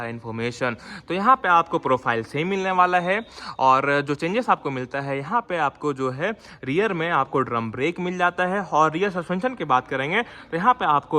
इन्फॉर्मेशन। तो यहाँ पे आपको प्रोफाइल सेम मिलने वाला है और जो चेंजेस आपको मिलता है यहाँ पे आपको जो है रियर में आपको ड्रम ब्रेक मिल जाता है। और रियर सस्पेंशन की बात करेंगे तो यहाँ पे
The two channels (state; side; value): identical; both; correlation 1.00